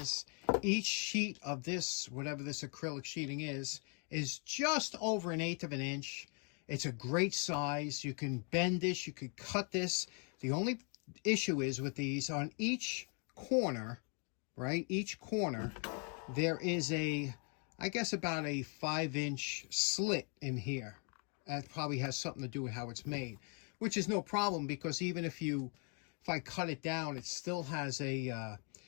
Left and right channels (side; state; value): right; quieter; 37.9 dB